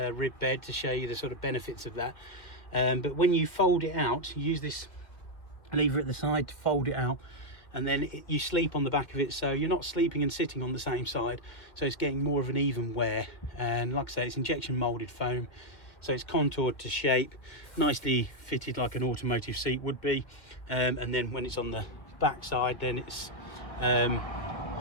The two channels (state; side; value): late; right; 1.8 ms